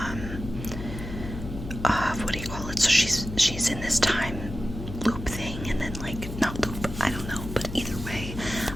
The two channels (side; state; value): left; noise; hum, 9 dB below the sound